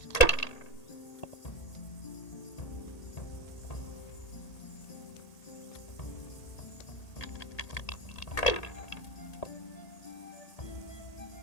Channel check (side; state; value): right; late; 1.8 ms